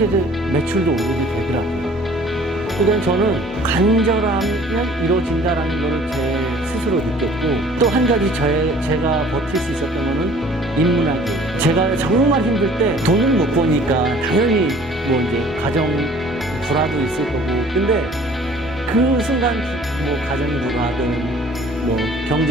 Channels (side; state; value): both; normal; correlation 0.52